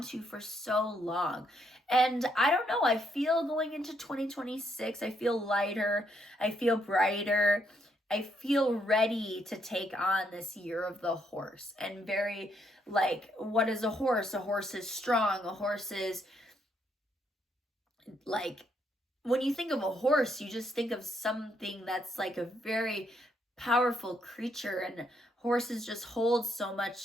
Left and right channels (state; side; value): normal; both; correlation 0.75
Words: to for so long. And I don't know, I feel going into 2026, I feel lighter, I feel brighter, I feel ready to take on this year of the horse. And very what is a horse? A horse is strong, a horse is when you think of a horse, you just think of something that's a very powerful creature, and horses just hold so